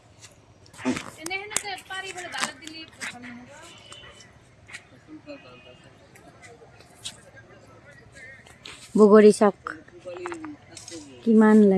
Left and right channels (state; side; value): identical; both; correlation 1.00